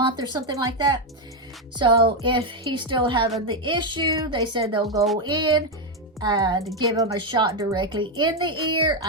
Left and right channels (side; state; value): both; normal; correlation 0.05